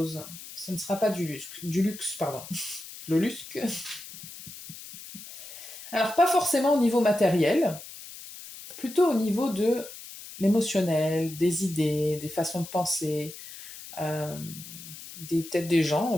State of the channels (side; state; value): left; noise; hiss, 14 dB below the sound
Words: ce ne sera pas du luxe, pardon. Le luxe. Alors, pas forcément au niveau matériel, plutôt au niveau de l'émotionnel, des idées, des façons de penser, peut-être des gens